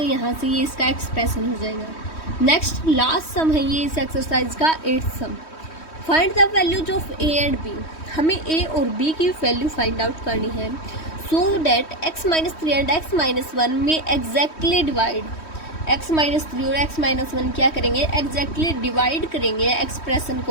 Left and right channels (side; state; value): right; late; 3.1 ms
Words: यहाँ से ये इसका एक्सप्रेशन हो जाएगा। नेक्स्ट लास्ट सम है ये इस एक्सरसाइज का 8th sum. Find the values of a and b। हमें a और b की वैल्यू फाइंड आउट करनी है so that x-3 and x-1 में एग्जैक्टली डिवाइड। x-3 और x-1 क्या करेंगे एग्जैक्टली डिवाइड करेंगे एक्सप्रेशन